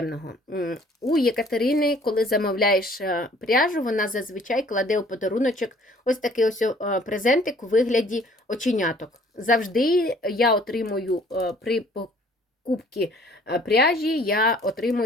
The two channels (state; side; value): normal; both; correlation 0.56